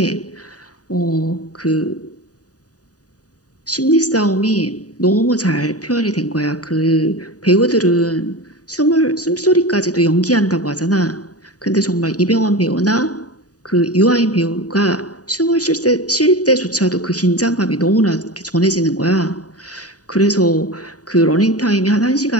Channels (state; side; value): late; right; 0.68 ms